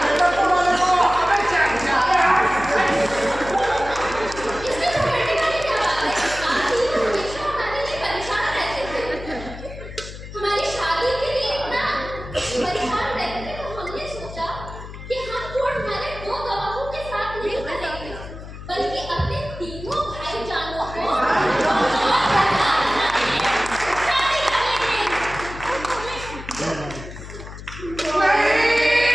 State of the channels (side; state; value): left; noise; hum, 12 dB below the sound